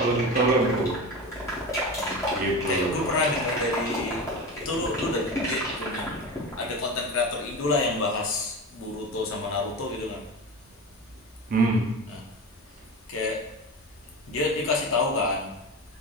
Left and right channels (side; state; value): both; normal; correlation 0.26